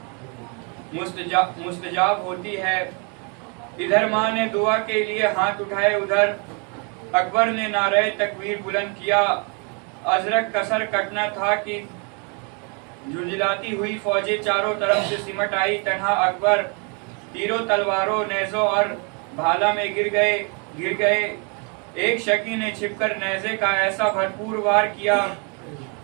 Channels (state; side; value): quieter; left; 35.3 dB